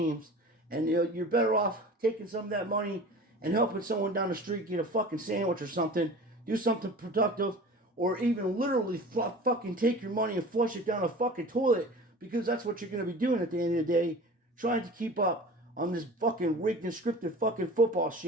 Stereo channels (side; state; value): both; normal; correlation 0.39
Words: and you're better off taking some of that money and helping someone down the street get a fucking sandwich or something, do something productive, or even literally fucking take your money and flush it down a fucking toilet, because that's what you're going to be doing at the end of the day, trying to keep up on this fucking rigged and scripted fucking football